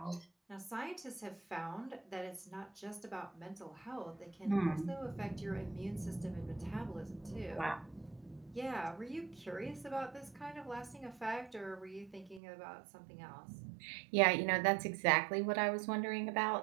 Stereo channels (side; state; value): left; drops out; at 12.4 s